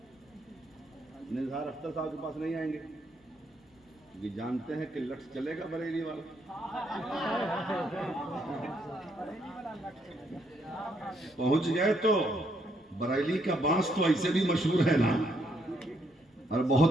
نثار اختر صاحب کے پاس نہیں آئیں گے، کیونکہ جانتے ہیں کہ لٹس چلے گا بریلی والا، پہنچ گئے تو بریلی کا بانس تو ایسے بھی مشہور ہے نا، اور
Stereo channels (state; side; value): normal; both; correlation 0.73